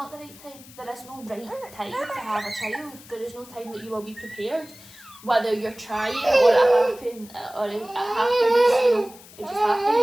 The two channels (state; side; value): noise; left; hiss, 21 dB below the sound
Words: the right time. There is no right time to have a child. There is no time that you will be prepared. Whether you're trying or it happens, it just